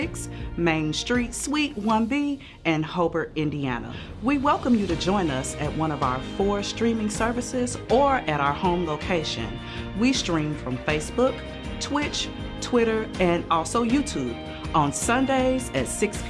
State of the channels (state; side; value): identical; both; correlation 1.00